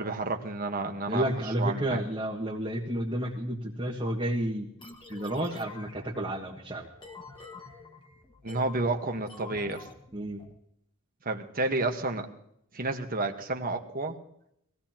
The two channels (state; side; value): normal; both; correlation 0.31